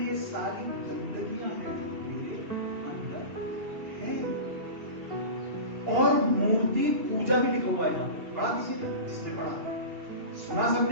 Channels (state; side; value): late; left; 2.7 ms